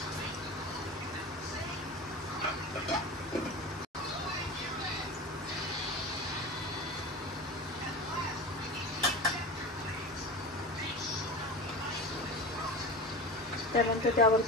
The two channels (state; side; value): normal; both; correlation 0.30